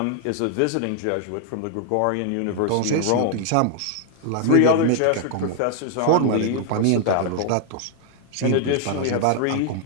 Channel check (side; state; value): both; different; correlation 0.00